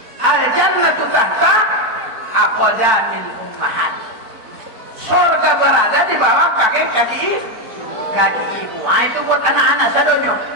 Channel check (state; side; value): late; left; 4.5 ms